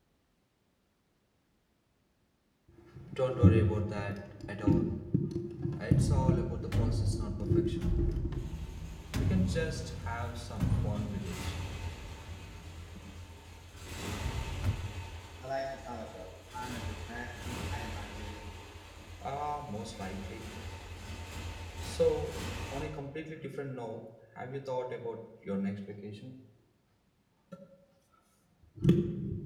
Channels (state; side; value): identical; both; correlation 1.00